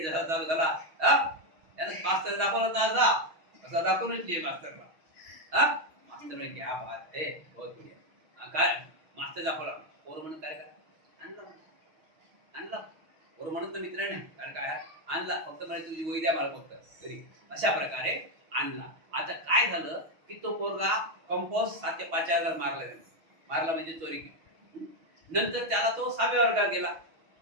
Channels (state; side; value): late; left; 6.3 ms